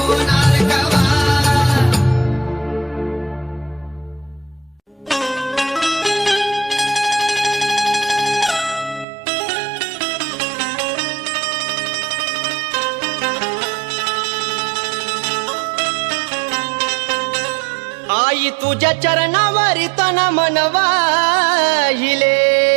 कवा आई तुझ्या चरणावरी तन मनवाहिले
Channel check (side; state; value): left; drops out; at 9.1 s